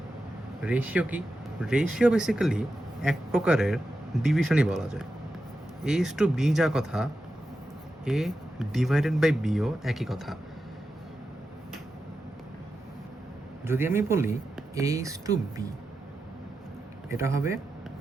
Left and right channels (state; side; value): normal; both; correlation 0.90